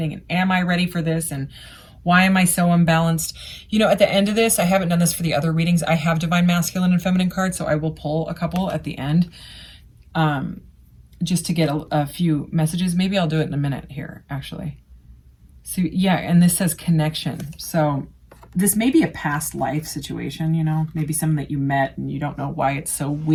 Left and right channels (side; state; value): both; identical; correlation 1.00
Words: and am I ready for this, and why am I so unbalanced? You know, at the end of this, I haven't done this for the other readings. I have divine masculine and feminine cards, so I will pull a couple at the end. Just to get a few messages. Maybe I'll do it in a minute here, actually. So yeah, and this says connection. So this may be a past life situation, you know, maybe someone that you met and you don't know why it's so